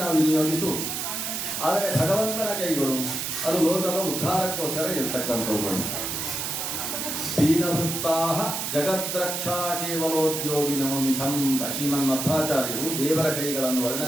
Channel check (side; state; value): right; noise; hiss, 3 dB below the sound